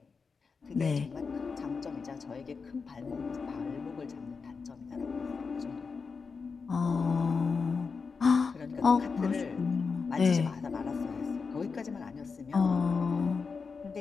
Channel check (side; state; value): right; quieter; 5.0 dB